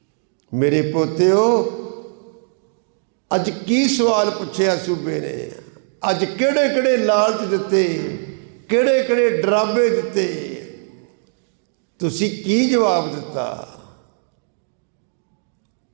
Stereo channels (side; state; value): left; silent; digital silence